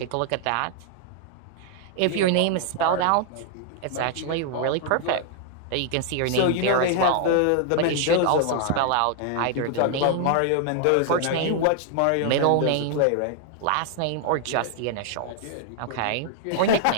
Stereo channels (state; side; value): different; both; correlation 0.00